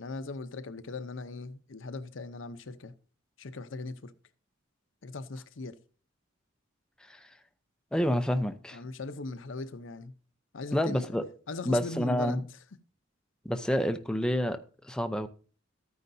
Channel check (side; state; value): both; normal; correlation 0.84